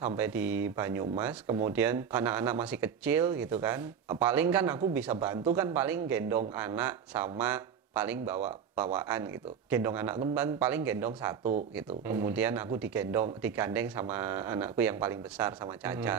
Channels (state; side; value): quieter; left; 7.5 dB